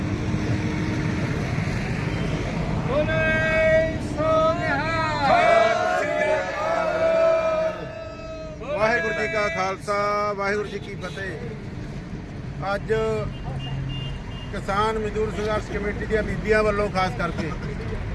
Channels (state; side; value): identical; both; correlation 1.00